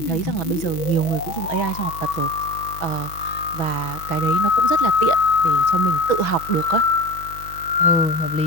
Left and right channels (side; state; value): right; late; 6.2 ms